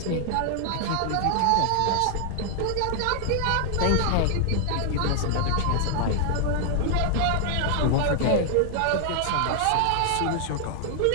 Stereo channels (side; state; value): both; different; correlation 0.00